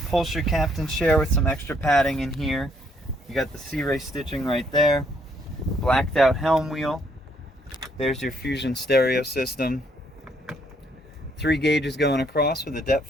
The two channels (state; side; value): normal; both; correlation 0.69